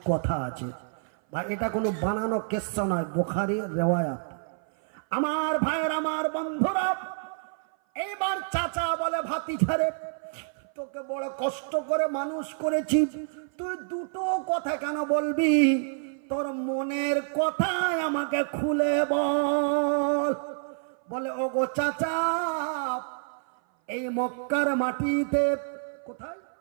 কথা আছে। ভাই এটা কোনো বানানো কিস্সা নয়, বুখারীর রিওয়ায়াত। আমার ভাইয়ের, আমার বন্ধুরা, এইবার চাচা বলে, ভাতিজা রে, তোকে বড় কষ্ট করে মানুষ করেছি, তুই দুটো কথা কেন বলবি? তোর মনের কথাই আমাকে খুলে বল। বলে, ওগো চাচা, এই মক্কার মাটিতে, কোথায়?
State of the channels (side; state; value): left; silent; 56 dB below the other